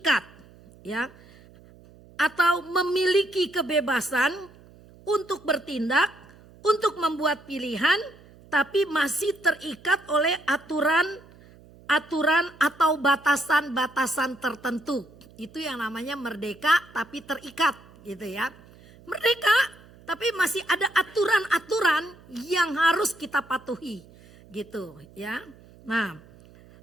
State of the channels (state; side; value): noise; right; hum, 24 dB below the sound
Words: ya, atau memiliki kebebasan untuk bertindak, untuk membuat pilihan, tapi masih terikat oleh aturan atau batasan-batasan tertentu. Itu yang namanya merdeka tapi terikat gitu ya. Merdeka tapi masih ada aturan-aturan yang harus kita patuhi gitu ya. Nah,